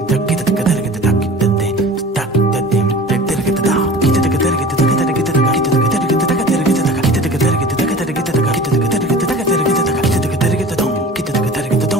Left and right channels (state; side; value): normal; both; correlation 0.40